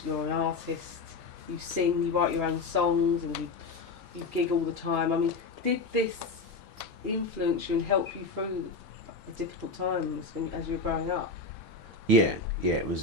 You're an artist. you sing, you write your own songs, and you gig all the time. I mean, did this influence you and help you through the difficult times as you were growing up? Yeah, it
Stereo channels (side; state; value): right; quieter; 3.8 dB